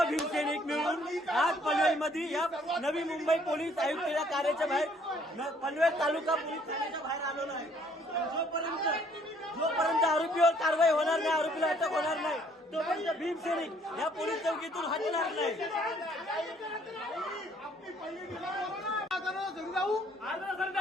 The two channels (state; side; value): normal; both; correlation 0.62